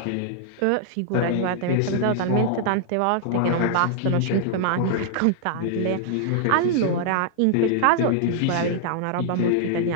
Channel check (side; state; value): both; different; correlation -0.01